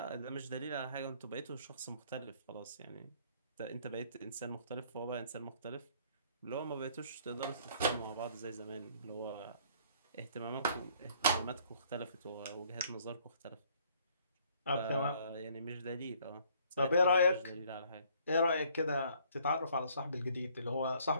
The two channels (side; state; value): both; inverted; correlation -0.61